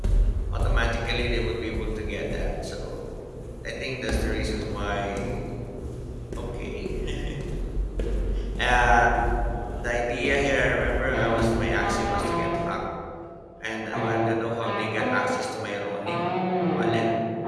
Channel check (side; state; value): both; identical; correlation 1.00